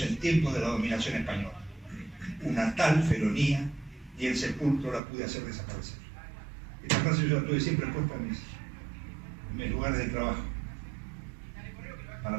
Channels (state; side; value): drops out; left; at 5.0 s